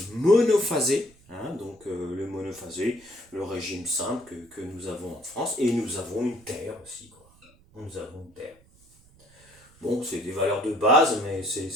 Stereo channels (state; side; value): noise; right; rumble, 28 dB below the sound